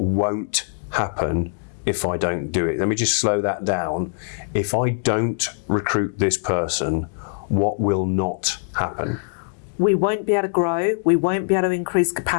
happen if I don't do it. Let me just slow that down. If I don't recruit this person, what will not happen? We won't be able to grow. We won't be able to increase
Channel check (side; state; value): right; silent; digital silence